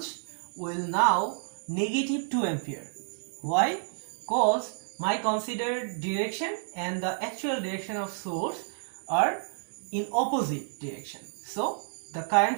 will now negative 2 ampere. Why? Because my considered direction and the actual direction of source are in opposite direction. So the current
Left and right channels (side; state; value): left; silent; 58 dB below the other